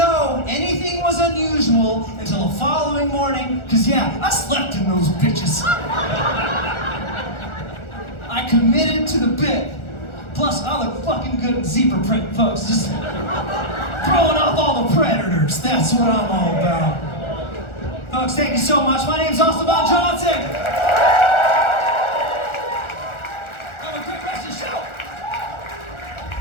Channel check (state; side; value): late; right; 1.4 ms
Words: anything was unusual until the following morning, because yeah, I slept in those bitches. I committed to the bit. Plus, I look fucking good in zebra print, folks. Just throwing off all the predators. That's what I'm all about. Folks, thank you so much. My name's Austin Von Johnson.